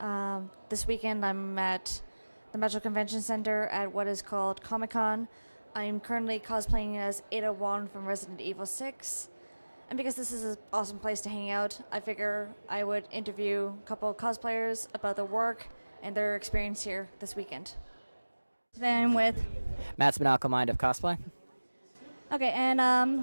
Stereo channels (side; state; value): both; inverted; correlation -1.00